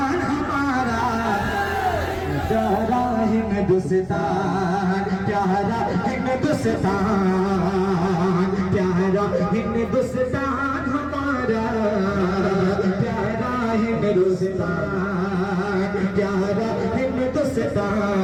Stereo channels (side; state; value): both; identical; correlation 1.00